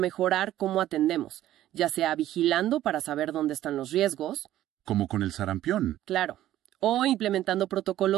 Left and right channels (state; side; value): quieter; left; 13.4 dB